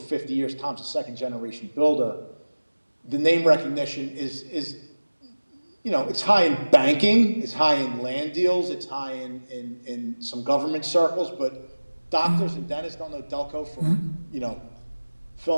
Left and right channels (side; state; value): both; inverted; correlation -1.00